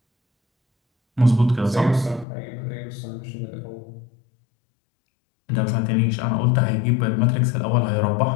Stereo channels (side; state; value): right; drops out; at 2.2 s